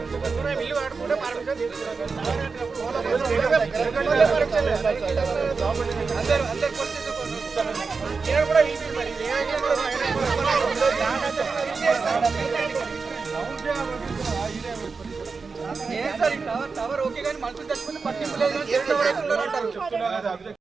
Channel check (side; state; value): left; quieter; 4.7 dB